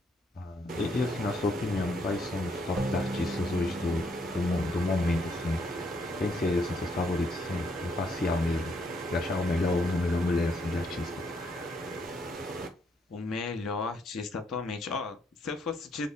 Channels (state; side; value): normal; both; correlation 0.73